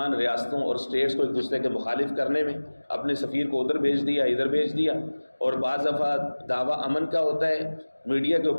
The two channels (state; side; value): inverted; both; correlation -1.00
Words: ریاستوں اور اسٹیٹس کو ایک دوسرے کے مخالف کرنے میں، اپنے سفیر کو ادھر بھیج دیا ادھر بھیج دیا، اور بعض دفعہ دعویٰ امن کا ہوتا ہے، میڈیا کے